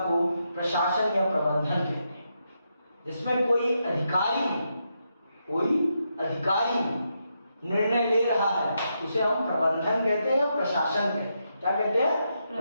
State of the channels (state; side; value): inverted; both; correlation -0.83